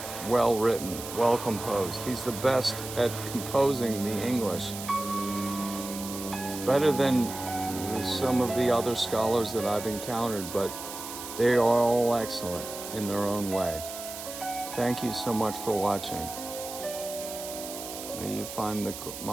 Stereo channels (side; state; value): right; noise; hiss, 10 dB below the sound